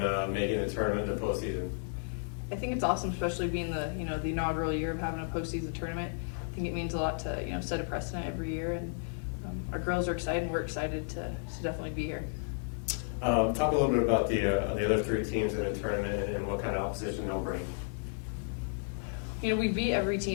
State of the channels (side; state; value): right; silent; digital silence